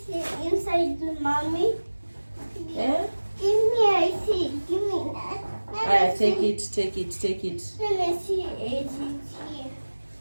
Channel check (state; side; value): inverted; both; correlation -1.00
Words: inside, Mommy? Yeah? Give me, I see. Give me that. Take it. Let me see it here.